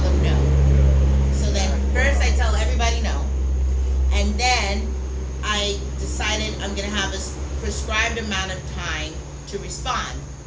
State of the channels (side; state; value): both; identical; correlation 1.00